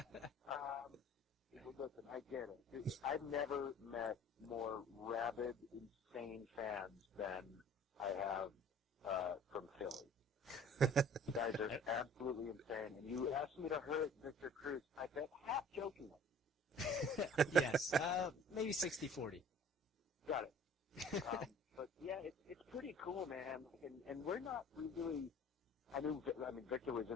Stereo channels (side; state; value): both; normal; correlation 0.49